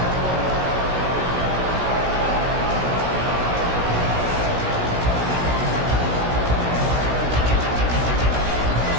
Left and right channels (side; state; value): left; late; 16 ms